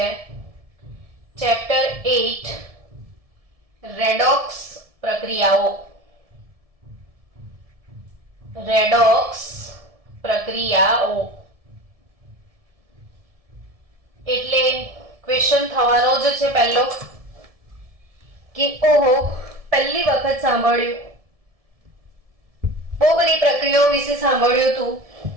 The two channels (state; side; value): late; left; 1.7 ms